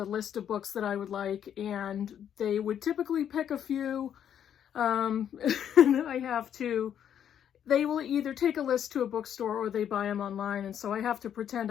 list of books that I would like, and they would typically pick a few. And they will either take a list to a bookstore or they buy them online, and so I have to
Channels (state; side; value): quieter; right; 9.3 dB